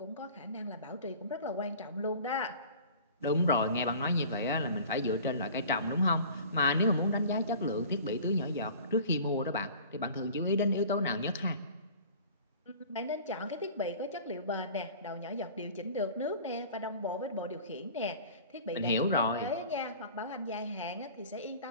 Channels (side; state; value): both; inverted; correlation -0.43